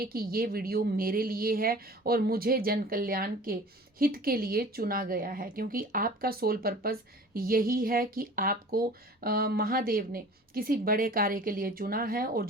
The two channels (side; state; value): both; normal; correlation 0.44